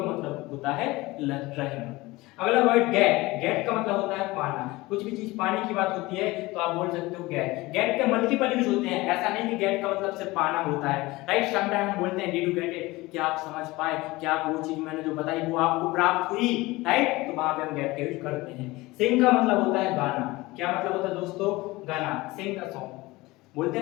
मतलब होता है रहना। अगला वर्ड गेट, गेट का मतलब होता है पाना। कुछ भी चीज पाने की बात होती है तो आप बोल सकते हो गेट। गेट के मल्टीपल यूज होते हैं, ऐसा नहीं कि गेट का मतलब सिर्फ पाना होता है, राइट। समटाइम हम बोलते हैं डिड यू गेट इट, क्या आप समझ पाए, क्या वो चीज मैंने जो बताई वो आपको प्राप्त हुई, राइट। तो वहां पे हम गेट का यूज करते हैं। सिंग का मतलब होता है गाना। क्या मतलब होता है दोस्तों, गाना, सिंग अ सॉन्ग। बोलते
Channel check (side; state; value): right; quieter; 20.8 dB